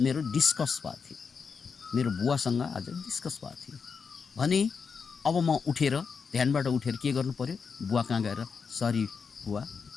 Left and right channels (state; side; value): quieter; right; 5.7 dB